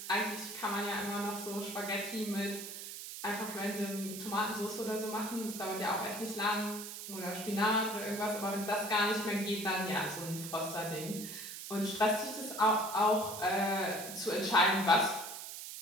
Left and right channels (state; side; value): noise; right; hiss, 9 dB below the sound